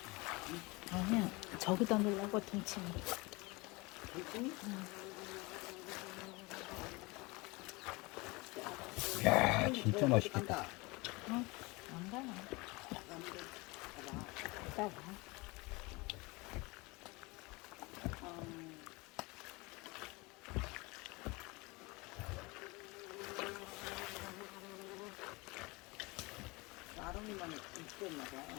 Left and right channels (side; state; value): right; quieter; 24.9 dB